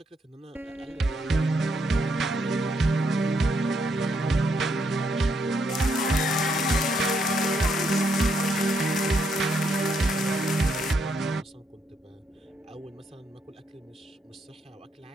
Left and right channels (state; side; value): normal; both; correlation 0.76